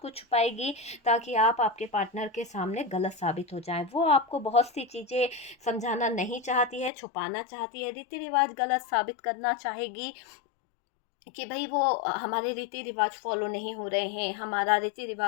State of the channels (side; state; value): right; drops out; at 6.9 s